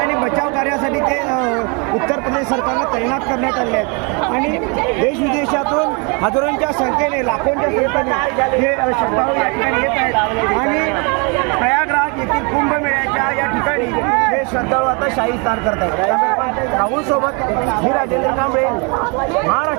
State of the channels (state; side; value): quieter; left; 33.0 dB